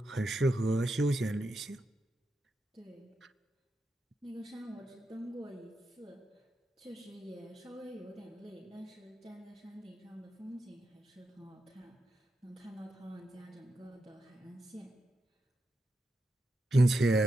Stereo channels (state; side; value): normal; both; correlation 0.87